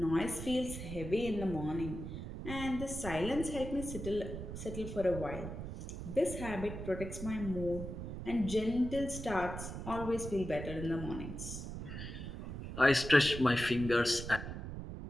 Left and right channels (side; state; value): right; noise; rumble, 7 dB below the sound